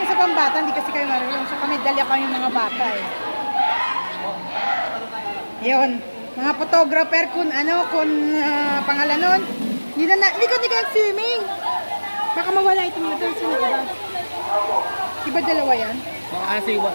sa pambata, hindi kasi kayo marunong. Sa kami, dalya kami mga bata eh. Ayun. Mga photographer kung pangalan nun. Hindi ko swimming. Baka mawala itong ito. Sino ba? Diba dalawa yan? Siwa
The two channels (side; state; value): both; inverted; correlation -1.00